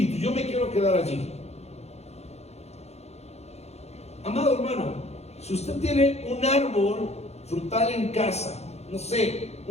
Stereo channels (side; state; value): right; late; 0.31 ms